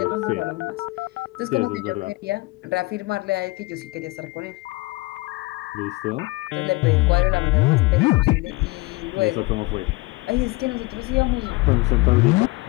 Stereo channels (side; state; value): right; quieter; 22.6 dB